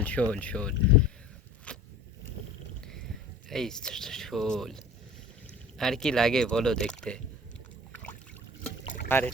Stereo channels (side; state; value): both; normal; correlation 0.43